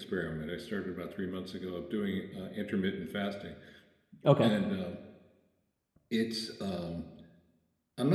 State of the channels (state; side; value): identical; both; correlation 1.00